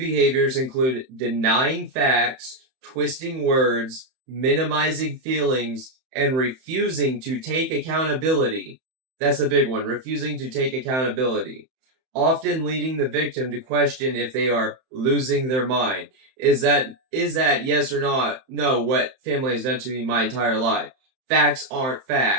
include denying facts, twisting words, minimizing feelings, and refusing to take accountability. That's a big one. Refusing to take accountability. Often leading the victim to question if they are losing their mind. Is that yes or not? No, what family has done to me my entire life. Facts aren't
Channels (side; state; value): left; late; 31 ms